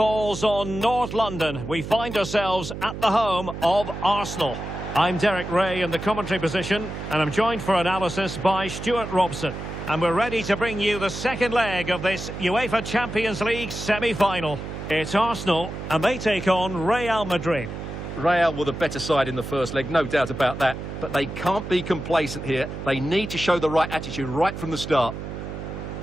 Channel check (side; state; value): right; noise; hum, 8 dB below the sound